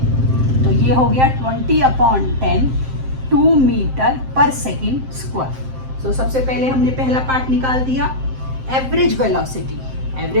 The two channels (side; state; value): left; late; 7.6 ms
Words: तो ये हो गया 20/10, 2 मीटर पर सेकंड स्क्वायर। तो सबसे पहले हमने पहला पार्ट निकाल दिया। एवरेज